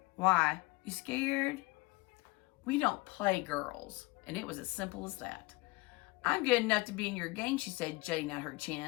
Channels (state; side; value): quieter; right; 23.1 dB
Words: Why? You scared? We don't play, girls. And it was as simple as that. I'm good enough to be in your gang, she said, jutting out her